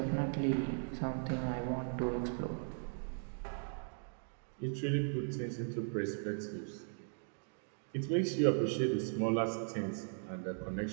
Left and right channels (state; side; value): silent; left; digital silence